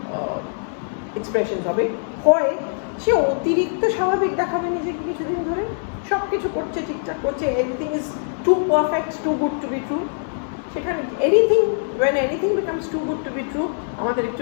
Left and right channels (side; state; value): right; silent; digital silence